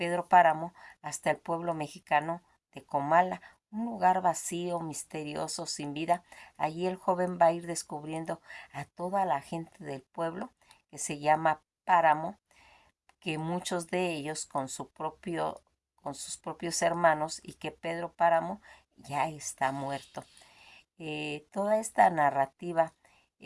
Páramo, hasta el pueblo mexicano de Comala, un lugar vacío, misterioso, sin vida. Allí el joven va a ir descubriendo a toda la gente del pueblo, que se llama Páramo, que muchos de ellos con sus propios hermanos, y que Pedro Páramo ya está muerto. Toda esta narrativa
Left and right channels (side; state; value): both; identical; correlation 1.00